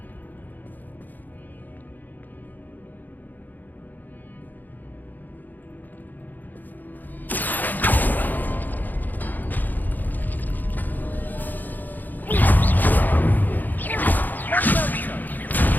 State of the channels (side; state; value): right; late; 0.085 ms